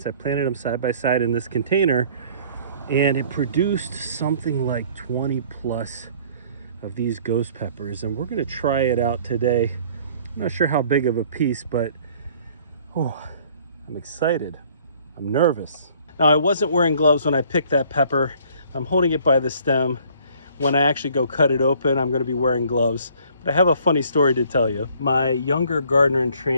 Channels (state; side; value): inverted; both; correlation -0.57